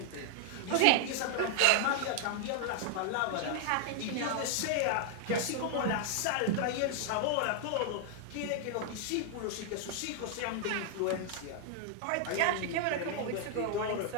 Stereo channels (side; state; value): both; different; correlation 0.00